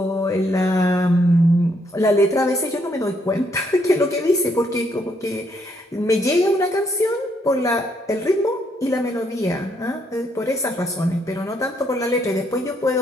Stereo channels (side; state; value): both; normal; correlation 0.73